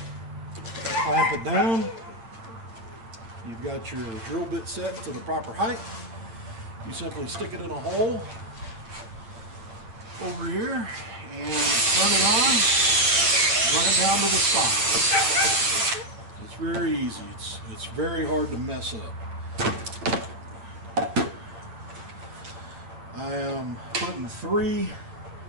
Clamp it down. You've got your drill bit set to the proper height. You simply stick it in a hole over here and turn it on, run it down to the side. It's very easy. It's very hard to mess up. I am putting 3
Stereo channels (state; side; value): late; left; 8.7 ms